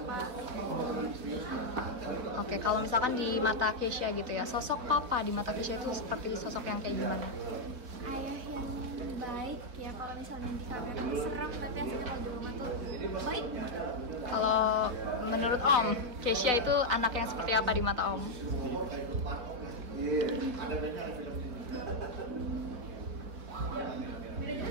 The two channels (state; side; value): late; left; 4.0 ms